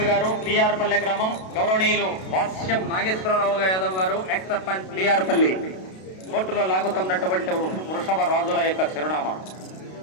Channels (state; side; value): late; right; 32 ms